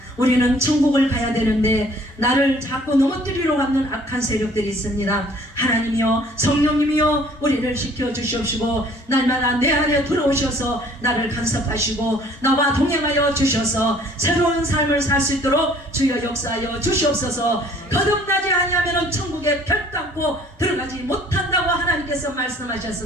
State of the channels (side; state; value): both; normal; correlation 0.56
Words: 우리는 천국을 가야 되는데 나를 자꾸 넘어뜨리러 가는 악한 세력들이 있습니다. 하나님이여 성령님이여 우리를 지켜주시옵시고 날마다 내 안에 들어오셔서 나를 간섭하시고 나와 동행하여 주셔서 새로운 삶을 살 수 있도록 주여 역사하여 주시옵소서. 거듭나지 아니하면 천국에 별담고 들어가지 못한다고 하나님께서